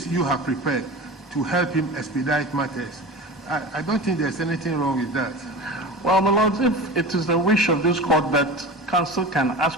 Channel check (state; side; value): normal; both; correlation 0.32